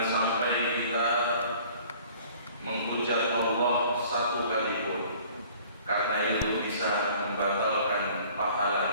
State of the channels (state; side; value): inverted; both; correlation -0.52